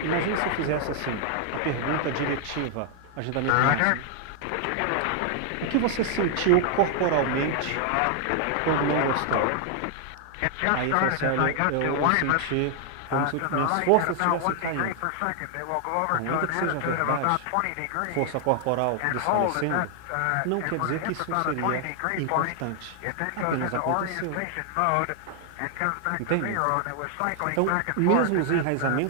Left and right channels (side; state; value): both; different; correlation 0.00